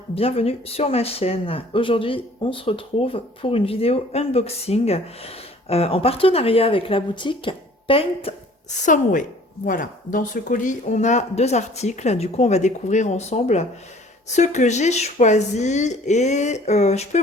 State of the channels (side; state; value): both; normal; correlation 0.52